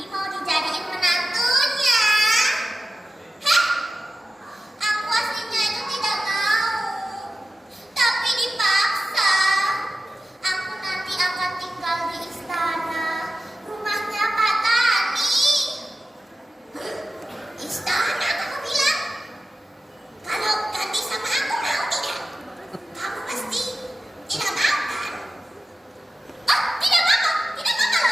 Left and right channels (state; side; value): normal; both; correlation 0.93